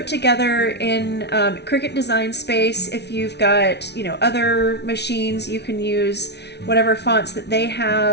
together in Cricut Design Space. If you've got, other machines, you can use whatever fonts that they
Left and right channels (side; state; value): right; late; 0.50 ms